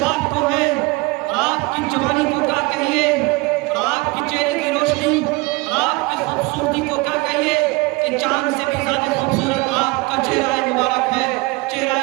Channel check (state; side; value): quieter; left; 24.2 dB